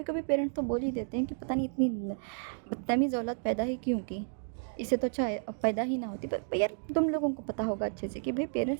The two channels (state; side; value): silent; left; digital silence